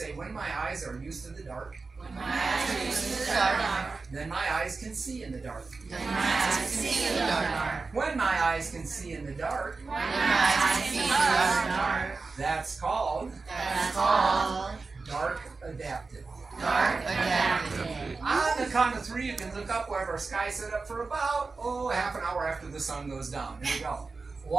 when my eyes are used to the dark, When my eyes are used to the dark, then my eyes can see in the dark. then my eyes can see in the dark. When my eyes can see in the dark, When my eyes can see in the dark, that's called dark adapted. dark adapted. On the count of 3, you can look up. We'll have our sky set up for about, half an hour after the sun goes down. Here we go.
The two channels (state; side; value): quieter; left; 4.1 dB